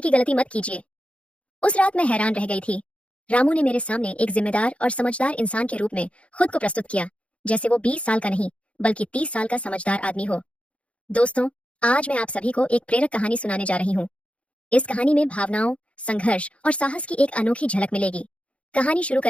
गलती मत कीजिए। उस रात मैं हैरान रह गई थी। रामू ने मेरे सामने एक जिम्मेदार और समझदार इंसान के रूप में खुद को प्रस्तुत किया, जैसे वो 20 साल का नहीं बल्कि 30 साल का समझदार आदमी हो। दोस्तों, आज मैं आप सभी को एक प्रेरक कहानी सुनाने जा रही हूँ। इस कहानी में भावनाओं, संघर्ष और साहस की एक अनोखी झलक मिलेगी। कहानी शुरू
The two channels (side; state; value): right; late; 0.062 ms